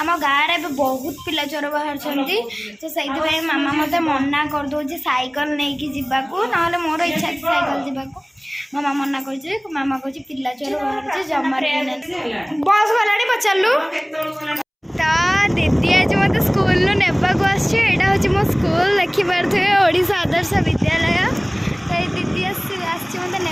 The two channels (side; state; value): both; identical; correlation 1.00